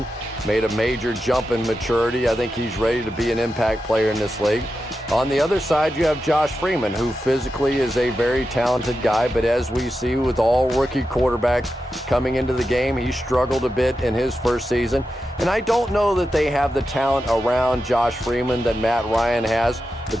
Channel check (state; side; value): normal; both; correlation 0.89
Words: made a major jump in maturity. I think he's ready to be an impact player in this league. On the other side, you have Josh Freeman, who physically is a very talented guy, but as we see with all rookie quarterbacks coming into the game, he struggled a bit in his first season. And I don't know that they have the talent around Josh Freeman that Matt Ryan has,